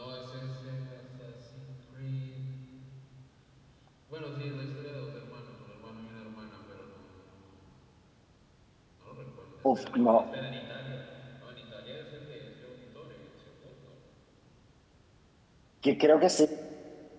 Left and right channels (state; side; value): identical; both; correlation 1.00